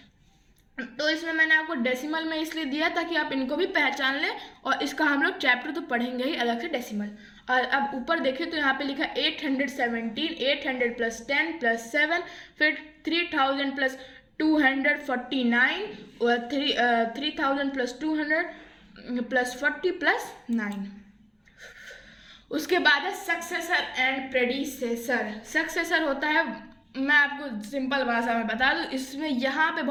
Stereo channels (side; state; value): both; identical; correlation 1.00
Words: तो इसमें मैंने आपको डेसिमल में इसलिए दिया ताकि आप इनको भी पहचान लें, और इसका हम लोग चैप्टर तो पढ़ेंगे ही अलग से डेसिमल। और अब ऊपर देखें तो यहाँ पे लिखा 817, 800 प्लस 10 प्लस 7, फिर 3000 प्लस 249 और 3000 प्लस 200 प्लस 40 प्लस 9। उसके बाद है सक्सेसर एंड प्रेडिसेसर। सक्सेसर होता है, मैं आपको सिंपल भाषा में बता दूं, इसमें यहाँ पे